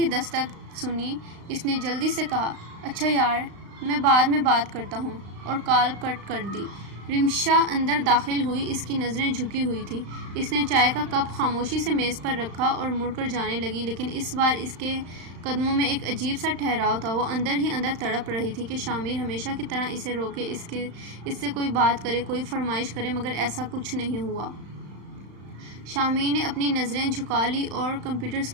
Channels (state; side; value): late; left; 35 ms